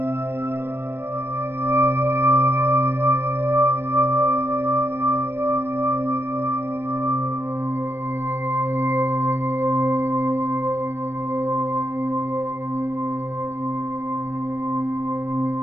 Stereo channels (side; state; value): left; late; 0.12 ms